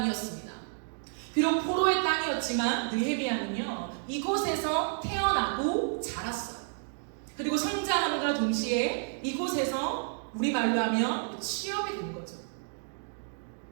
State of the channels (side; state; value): left; silent; digital silence